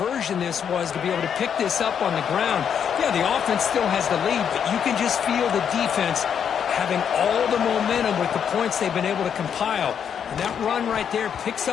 this was to be able to pick this up on the ground. Yeah, the offense still has the lead, but you can just feel the defense having all the momentum with the points they've been able to compile. And that run right there picks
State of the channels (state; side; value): quieter; right; 7.9 dB